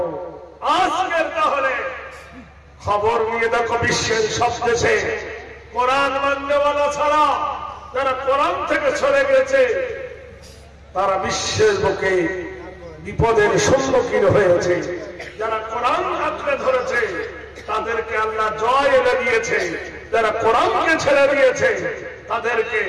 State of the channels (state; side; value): identical; both; correlation 1.00